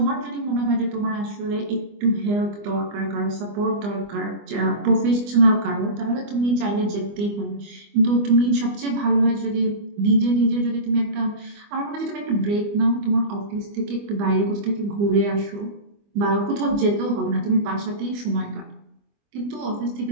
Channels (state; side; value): late; left; 25 ms